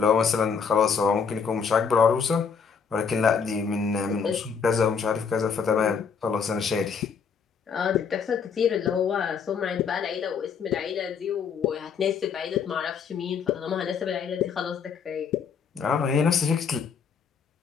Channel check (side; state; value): right; quieter; 6.3 dB